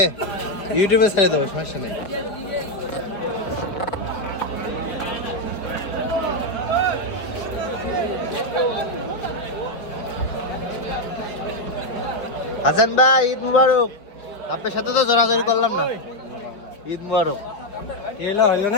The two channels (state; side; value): late; right; 5.1 ms